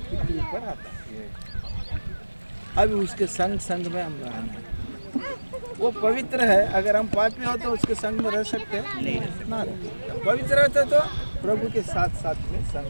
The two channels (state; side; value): inverted; both; correlation -1.00